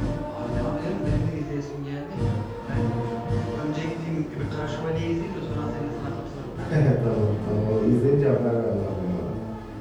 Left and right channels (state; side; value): identical; both; correlation 1.00